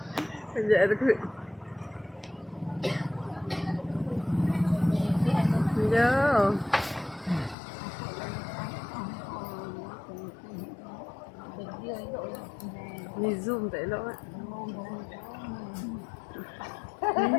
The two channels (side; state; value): right; drops out; at 7.6 s